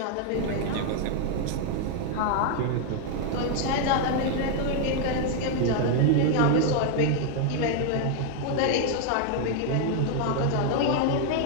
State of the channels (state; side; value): different; both; correlation 0.00